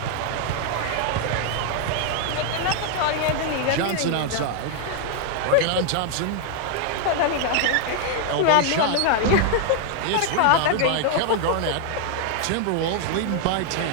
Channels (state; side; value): different; both; correlation 0.00